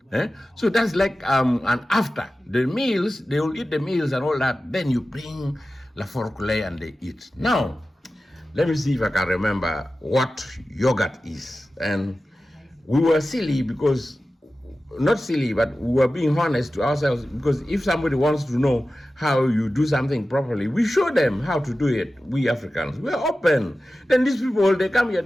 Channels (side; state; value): both; normal; correlation 0.94